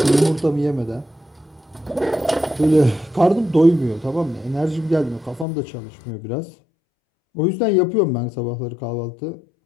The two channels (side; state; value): right; drops out; at 5.5 s